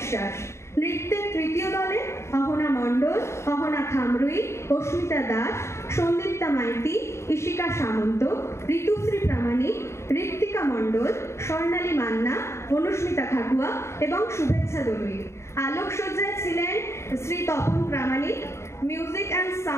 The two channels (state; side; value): late; right; 0.13 ms